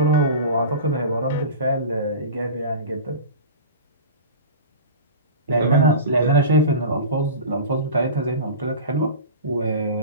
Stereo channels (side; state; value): both; inverted; correlation -0.32